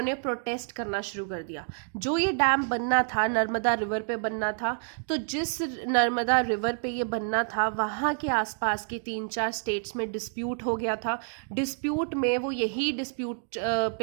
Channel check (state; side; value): silent; left; 56 dB below the other